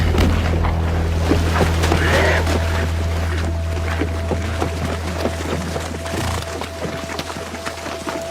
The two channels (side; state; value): both; identical; correlation 1.00